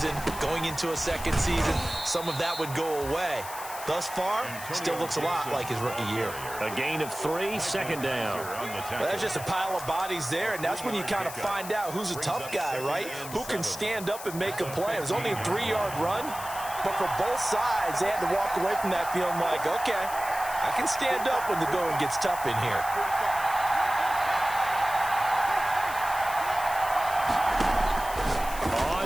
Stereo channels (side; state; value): left; noise; hiss, 12 dB below the sound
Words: going into a second season, some of that would go away. Thus far, still looks a lot like his rookie year. A gain of 3, 2nd down. Well, that's just a pile of bodies there, and that's when you kind of find out who's a tough guy, right? Who can stand up and make a play. It was only a 3-yard run, but for both sides, they had to walk away from that feeling like, okay, I can stand up when the going gets tough in here.